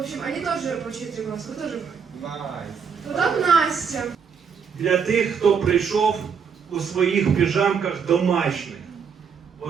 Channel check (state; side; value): quieter; left; 6.4 dB